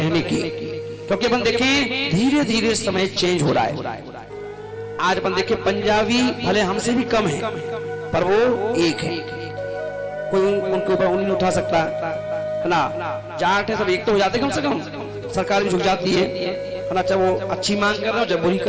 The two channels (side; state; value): both; identical; correlation 1.00